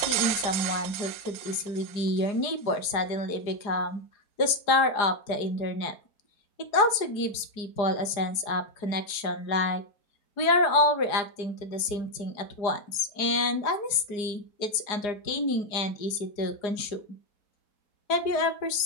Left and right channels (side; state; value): right; late; 4.8 ms